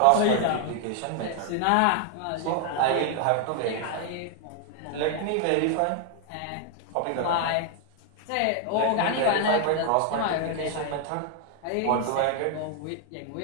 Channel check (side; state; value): both; different; correlation 0.00